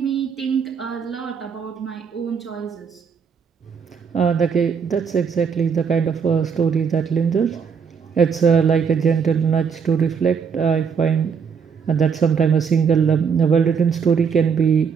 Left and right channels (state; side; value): quieter; left; 6.3 dB